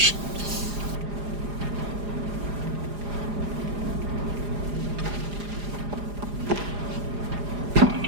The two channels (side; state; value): left; late; 4.9 ms